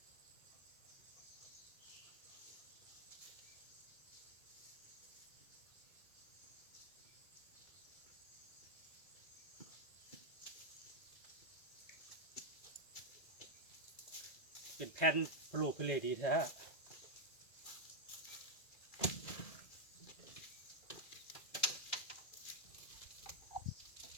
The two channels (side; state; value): right; late; 1.7 ms